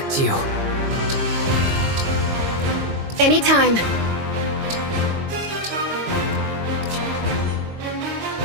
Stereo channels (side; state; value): left; late; 22 ms